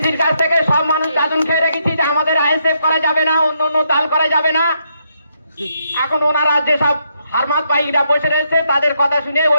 কাছ থেকে সব মানুষ দাদন খেয়ে রেখেছি যে আমাদের আইএসএফ করা যাবে না, অন্য অন্য দল করা যাবে না। এখন ওনারা যেসব হারমাত ভাইরা বসে রয়েছে তাদের কথা শুনে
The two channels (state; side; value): inverted; both; correlation -0.77